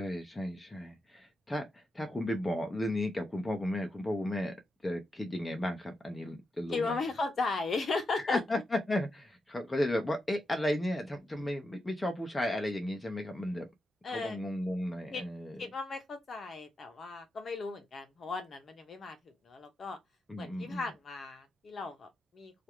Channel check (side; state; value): both; normal; correlation 0.86